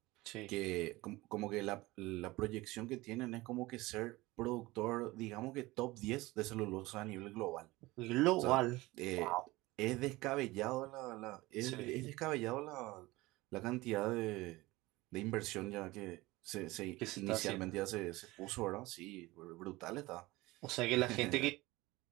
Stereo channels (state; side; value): quieter; left; 20.2 dB